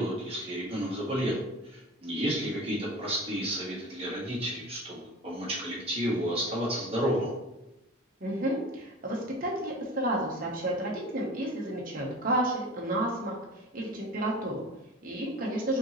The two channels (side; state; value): both; normal; correlation 0.37